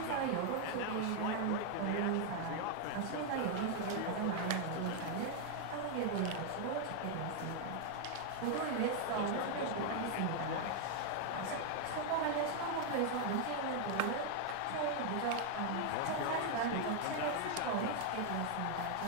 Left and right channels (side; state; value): both; different; correlation 0.00